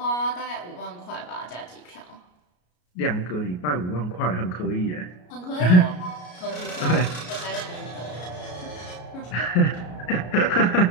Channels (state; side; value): late; right; 33 ms